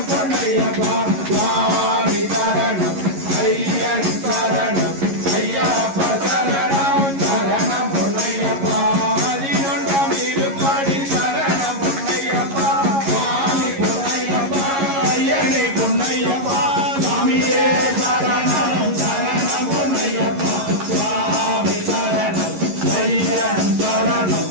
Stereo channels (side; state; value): left; late; 11 ms